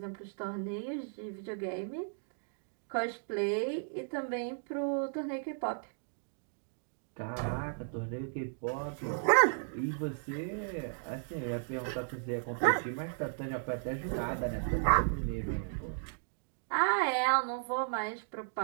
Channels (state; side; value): silent; left; digital silence